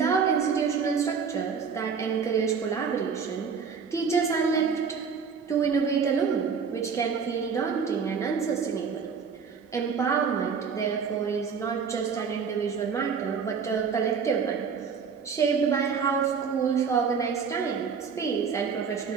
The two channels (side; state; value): left; quieter; 6.1 dB